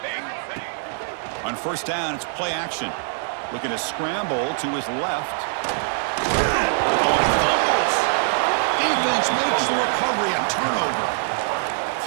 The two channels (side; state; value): left; silent; digital silence